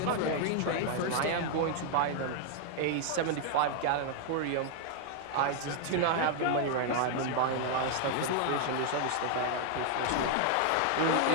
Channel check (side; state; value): both; different; correlation 0.00